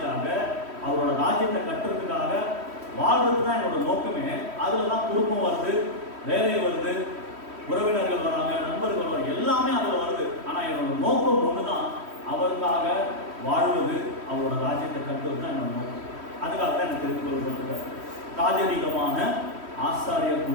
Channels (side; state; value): left; late; 3.1 ms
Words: அவரோட ராஜ்யத்தை கட்டுறதுக்காக வாழ்றது தான் என்னோட நோக்கமே. அதுலதான் குடும்பம் வருது, வேலை வருது, உறவினர்கள் வராங்க, நண்பர்கள் வராங்க, எல்லாமே அதுல வருது. ஆனா என்னோட நோக்கம் ஒண்ணுதான், அவருக்காக வாழ்வது, அவரோட ராஜ்யத்தை கட்டுவது தான் என்னோட நோக்கம். அதுக்காக தான் எனக்கு தெரிந்து கொள்ளப்பட்டிருக்காரு. ராஜரீகமான ஆசாரியர்